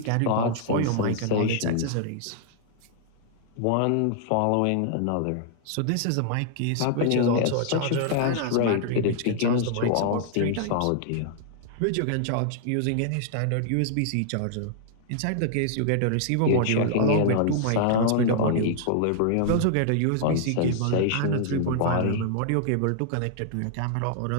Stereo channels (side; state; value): both; different; correlation -0.01